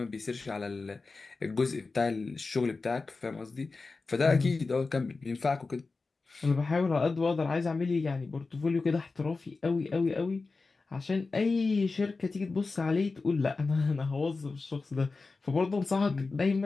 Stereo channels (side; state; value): right; quieter; 3.9 dB